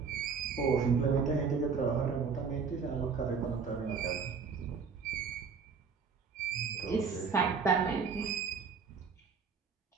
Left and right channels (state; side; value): quieter; left; 5.6 dB